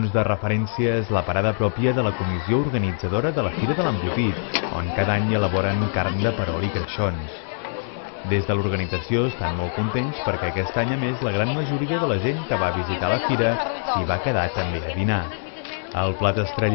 de referència és la parada pròpia de la comissió organitzadora de la Fira de l'Embotit, on cada any elaboren carn de perol i creixons. Des de l'organització estan molt contents perquè aquest any, a més, la gran majoria de la gent que va visitar la fira s'hi va quedar també a dinar. El plat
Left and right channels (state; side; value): silent; right; 63 dB below the other